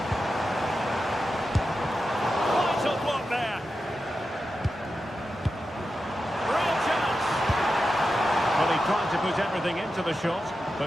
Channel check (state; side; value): normal; both; correlation 0.90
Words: Vital block there. Real chance. Well, he tried to put everything into the shot, but